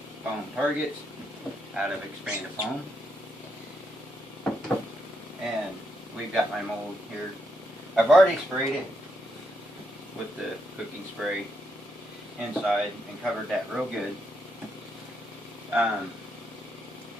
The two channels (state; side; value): normal; both; correlation 0.80